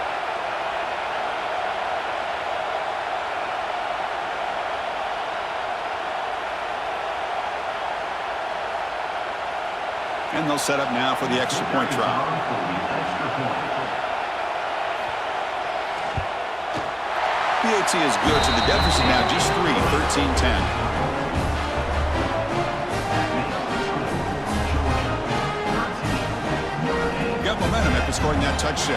And they'll set up now for the extra point try. PAT is good, so the deficit now just 3, 13-10. Got momentum after scoring that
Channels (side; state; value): both; identical; correlation 1.00